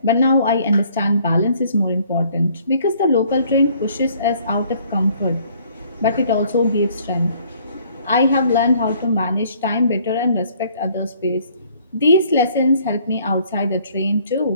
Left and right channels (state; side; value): inverted; both; correlation -0.60